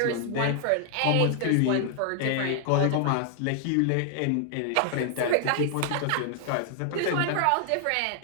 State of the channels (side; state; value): both; different; correlation 0.00